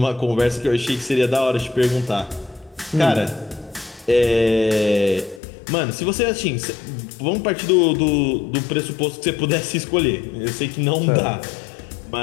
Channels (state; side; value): drops out; right; at 5.4 s